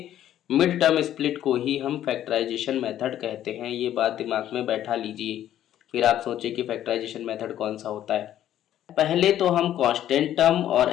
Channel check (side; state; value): right; quieter; 11.7 dB